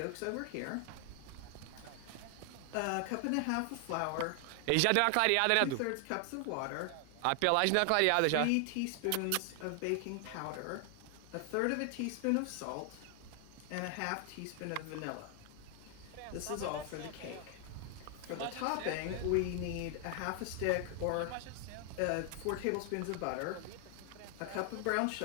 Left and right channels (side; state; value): both; different; correlation 0.00